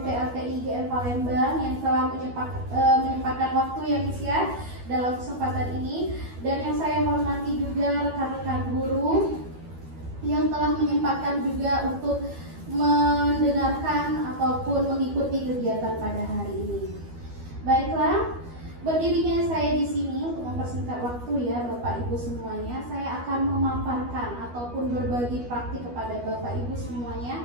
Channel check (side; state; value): left; late; 12 ms